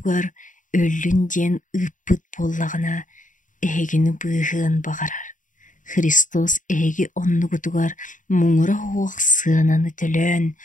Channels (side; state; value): right; late; 0.37 ms